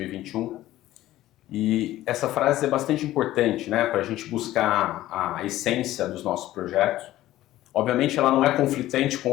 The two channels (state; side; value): quieter; right; 15.0 dB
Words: E essa frase é bastante importante, né? Para a gente buscar a essência dos nossos projetos. Obviamente ela não é conflitante com